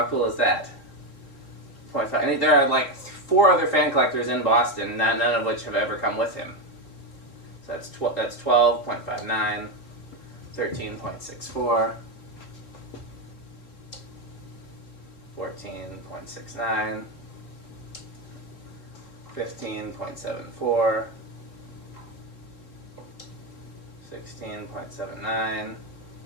cool is that? 0.5. I think there are like 4 other fan collectors in Boston, none of which have ever come with him. So that's 12.59, 13.64, 14.69, 15.74, 16.79,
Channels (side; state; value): right; late; 3.3 ms